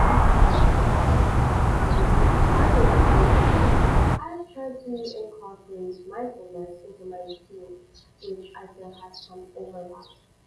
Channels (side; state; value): both; identical; correlation 1.00